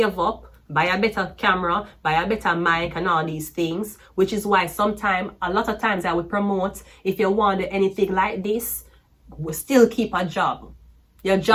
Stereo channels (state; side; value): identical; both; correlation 1.00